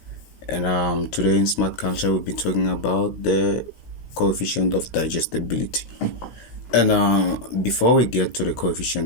And today in Smart Culture, we'll be talking about the coefficient of digestibility. And before we get to the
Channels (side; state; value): right; late; 16 ms